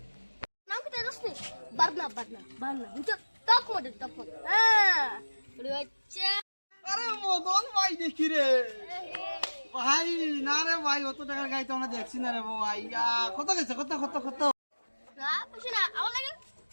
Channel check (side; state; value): both; inverted; correlation -1.00